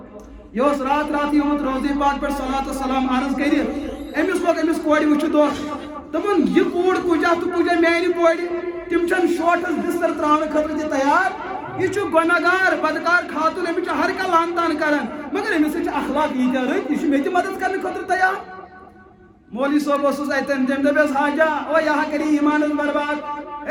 یہ اوس رات راتھٕے آمُت روزے پاک پٮ۪ٹھ صلات وسلام عرض کٔرِتھ أمِس لوٚگ أمِس کورِ وٕچھِتھ دۄکھ دوٚپُن یہِ کوٗر کُجا تہٕ کُجا میانہِ کورِ تِم چھنہٕ شوٹس بستر تراونہٕ خٲطرٕ تہِ تیار یہ گناہگار بدکار خاتون امس ہر کھانا لان تان کر مگر امس اخلاق یہ رت یہ مے مدد کرنے خاطر تیار مولوی صاحب اتن تم دس حاجہ او یہ کری ایمان برباد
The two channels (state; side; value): identical; both; correlation 1.00